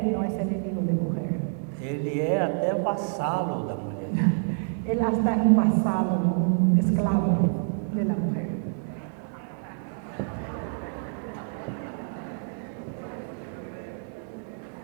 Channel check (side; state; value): left; silent; digital silence